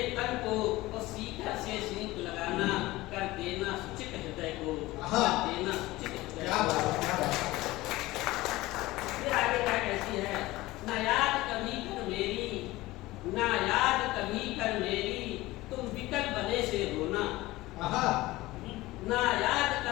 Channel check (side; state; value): right; quieter; 18.8 dB